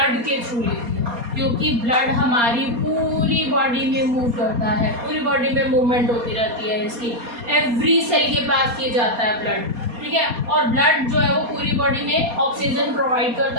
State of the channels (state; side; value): late; left; 4.2 ms